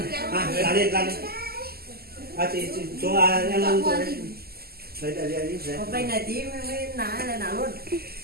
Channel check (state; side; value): late; left; 0.45 ms